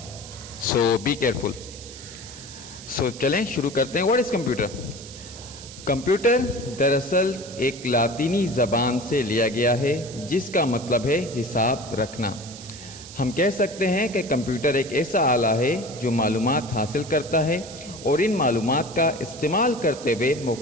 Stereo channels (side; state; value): right; noise; hiss, 15 dB below the sound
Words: سو بی کیئرفل. سو چلیں شروع کرتے ہیں. What is computer? کمپیوٹر دراصل ایک لاطینی زبان سے لیا گیا ہے جس کا مطلب ہے حساب رکھنا. ہم کہہ سکتے ہیں کہ کمپیوٹر ایک ایسا آلہ ہے جو معلومات حاصل کرتا ہے اور ان معلومات کا استعمال کرتے ہوئے